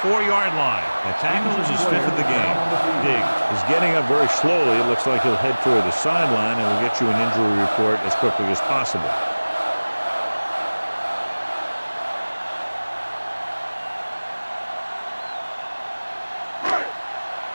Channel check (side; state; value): both; inverted; correlation -1.00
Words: 4-yard line. The tackle is his 5th of the game. Diggs He's getting up very slowly. It looks like he'll head toward the sideline, and we'll get you an injury report as quickly as possible.